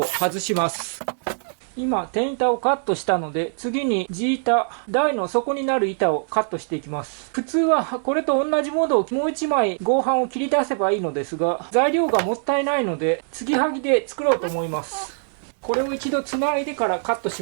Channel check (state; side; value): silent; left; 60 dB below the other